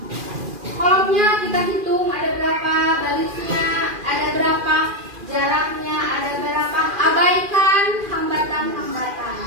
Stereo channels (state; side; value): late; left; 2.4 ms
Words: Kolomnya kita hitung ada berapa, barisnya ada berapa, jaraknya ada berapa. Abaikan hambatan-hambatan.